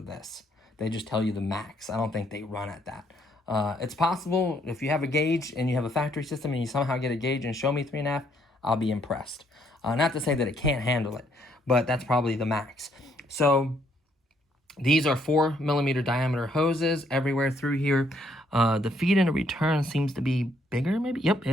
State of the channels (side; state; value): both; normal; correlation 0.70